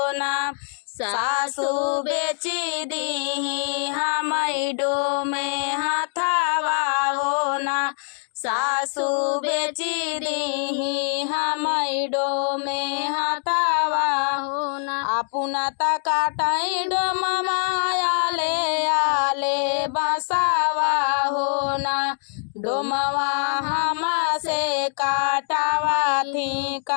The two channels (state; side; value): silent; right; digital silence